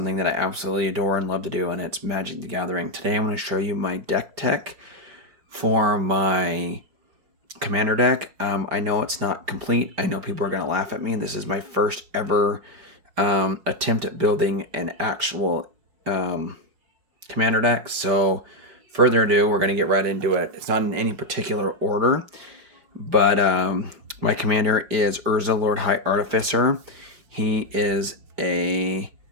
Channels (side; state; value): left; late; 5.0 ms